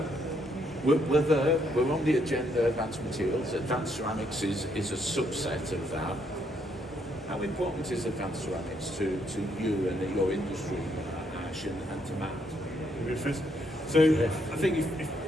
we're there, we're on the agenda, advanced materials. Advanced ceramics is a subset of that. How important is advanced ceramics to you and your industry, Ash, and to Matt? So I think if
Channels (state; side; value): normal; both; correlation 0.73